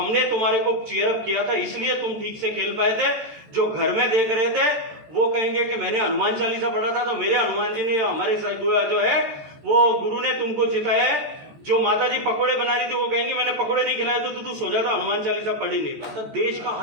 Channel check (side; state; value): left; late; 13 ms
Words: तुम्हारे को चीयर अप किया था, इसलिए तुम ठीक से खेल पाए थे। जो घर में देख रहे थे वो कहेंगे कि मैंने हनुमान चालीसा पढ़ा था, तो मेरे हनुमान जी ने, हमारे जो है वो गुरु ने तुमको जिताया है। जो माता जी पकोड़े बना रही थी वो कहेंगे मैंने पकोड़े नहीं खिलाए तो तू सो जाता, हनुमान चालीसा पढ़ ही नहीं पाता। देश का